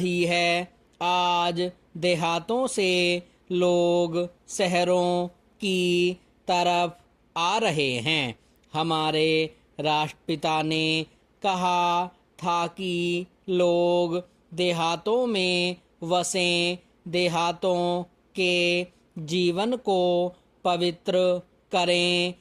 है। आज देहातों से लोग शहरों की तरफ आ रहे हैं। हमारे राष्ट्रपिता ने कहा था कि लोग देहातों में वसें, देहातों के जीवन को पवित्र करें।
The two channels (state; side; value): identical; both; correlation 1.00